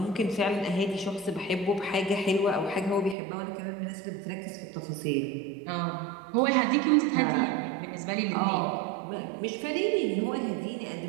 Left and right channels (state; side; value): drops out; left; at 3.2 s